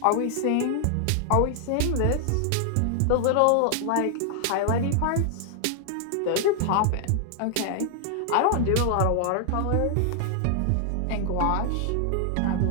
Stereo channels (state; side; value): different; both; correlation 0.00